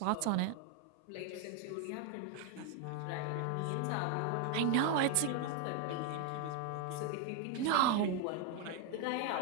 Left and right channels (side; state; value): both; different; correlation 0.00